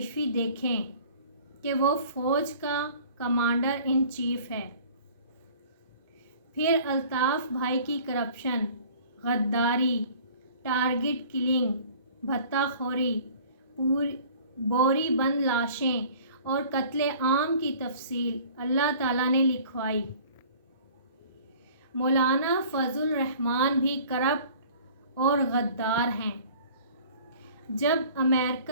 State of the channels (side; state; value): both; inverted; correlation -0.49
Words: دیکھیں کہ وہ فوج کا کمانڈر ان چیف ہے۔ پھر الطاف بھائی کی کرپشن، غداری، ٹارگٹ کلنگ، بھتہ خوری، بوری بند لاشیں اور قتل عام کی تفصیل اللہ تعالیٰ نے لکھوائی۔ مولانا فضل الرحمان بھی کرپٹ اور غدار ہیں۔ جب